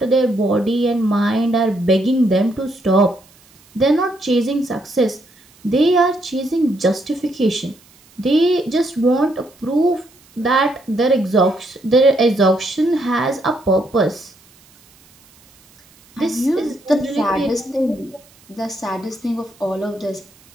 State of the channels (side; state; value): right; noise; hiss, 29 dB below the sound